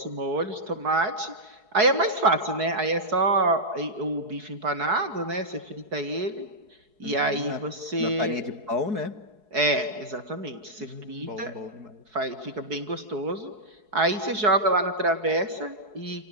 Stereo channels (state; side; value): late; left; 4.7 ms